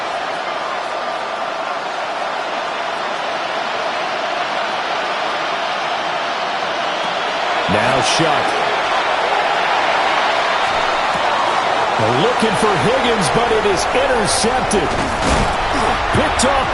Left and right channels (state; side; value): identical; both; correlation 1.00